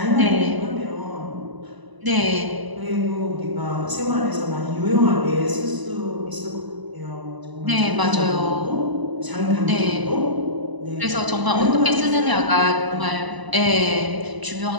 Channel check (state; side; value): late; left; 1.0 ms